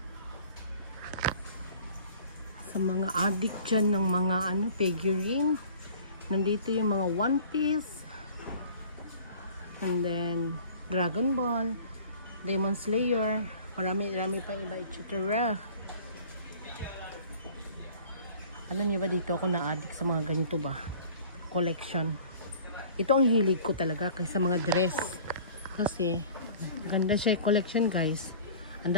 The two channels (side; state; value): both; inverted; correlation -0.47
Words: Sa mga addict dyan ng mga figurine. Nandito yung mga One Piece. And then Dragon Ball, Demon Slayer, marami pang iba, etc. Alam niyo ba dito ako na-addict sa mga ganito ba? Collection. Ito ang hilig ko talaga kaysa mga dress. Kasi ganda siya collection guys.